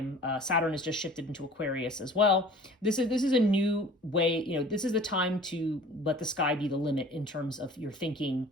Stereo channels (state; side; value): normal; both; correlation 0.46